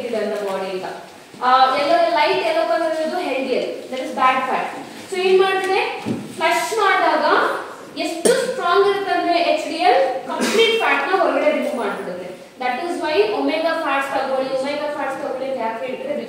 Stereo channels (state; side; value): identical; both; correlation 1.00